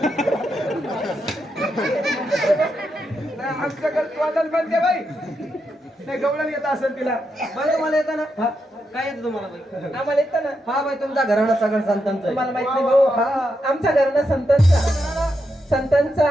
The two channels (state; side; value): normal; both; correlation 0.83